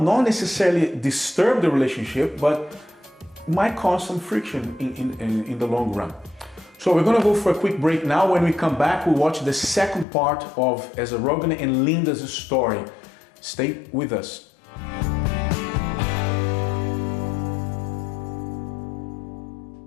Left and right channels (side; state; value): right; drops out; at 10.1 s